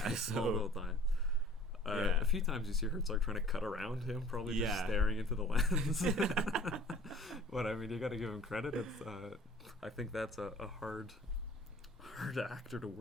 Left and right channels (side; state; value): both; normal; correlation 0.49